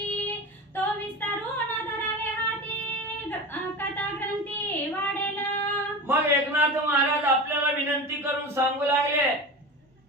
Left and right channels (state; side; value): normal; both; correlation 0.28